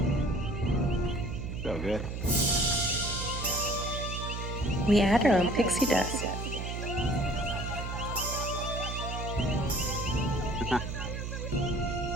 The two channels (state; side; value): noise; right; hum, 5 dB below the sound